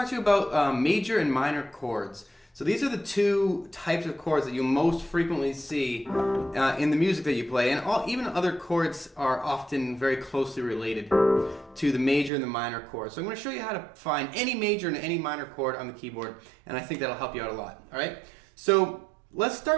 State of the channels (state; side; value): drops out; left; at 12.3 s